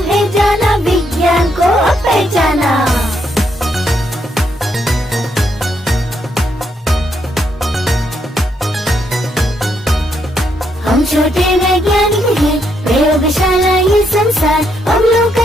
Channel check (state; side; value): normal; both; correlation 0.76